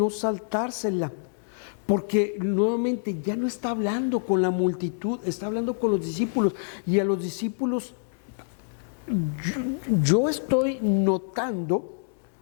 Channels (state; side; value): silent; right; digital silence